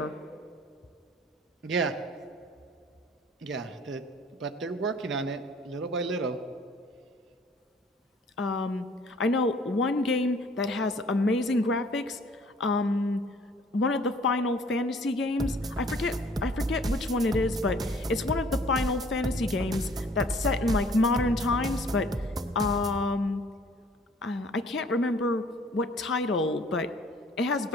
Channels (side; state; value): both; normal; correlation 0.55